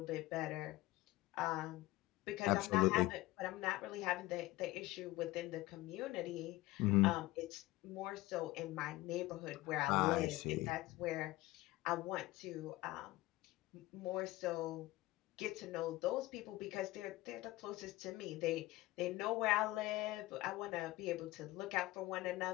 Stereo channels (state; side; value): quieter; right; 18.6 dB